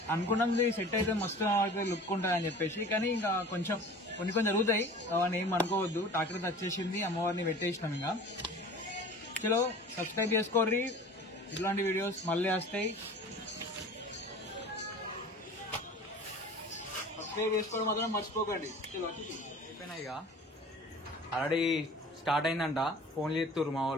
అనుకున్నాం సెట్ అయితే మస్తు లుక్ ఉంటుంది అని చెప్పేసి, కానీ ఇంకా కొంచెం కొన్ని జరుగుతాయి, అవన్నీ ఏం అనుకోవద్దు. ట్రాక్టర్ వచ్చేసింది, అమ్మవారిని పెట్టేసినాం. ఇంకా చలో సబ్స్క్రైబ్ చేసుకోర్రి, ఇట్లాంటి వీడియోస్ మళ్ళీ వస్తాయి. సబ్స్క్రైబ్ చేసుకోవడం మాత్రం మర్చిపోకండి. చలో అయిపోయినాయి. ఇక ఆల్రెడీ స్టార్ట్ అయిందంట, ఫోన్లు చేస్తుర్రు మా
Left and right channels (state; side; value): normal; both; correlation 0.42